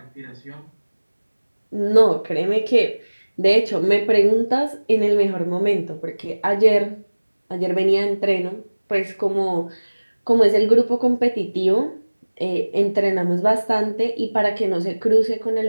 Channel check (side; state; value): both; inverted; correlation -1.00